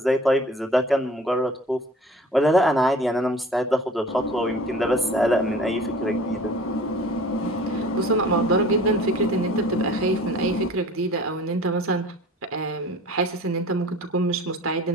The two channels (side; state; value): both; normal; correlation 0.45